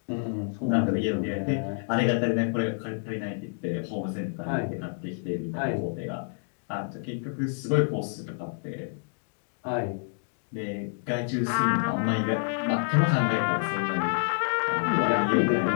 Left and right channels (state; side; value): silent; right; 59 dB below the other